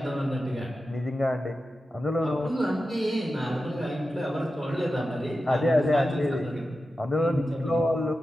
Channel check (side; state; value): both; normal; correlation 0.92